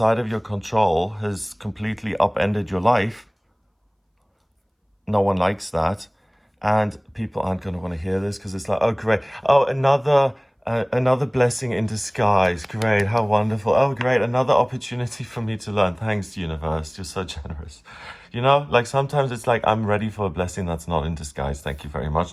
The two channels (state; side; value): identical; both; correlation 1.00